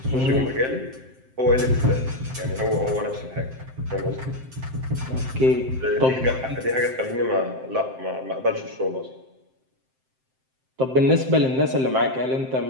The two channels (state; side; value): late; left; 7.7 ms